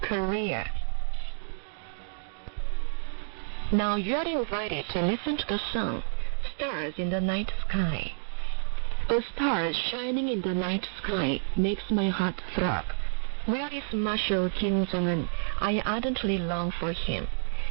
Korea. Now you are invited to listen to the song, Stars in the Night Sky. A star shining in the night sky makes my heart throb. Where is Marshal Kim Jong-un? I ardently long for him.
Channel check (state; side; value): silent; left; digital silence